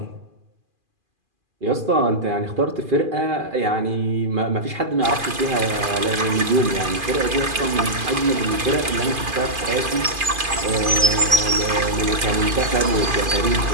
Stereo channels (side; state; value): left; late; 2.5 ms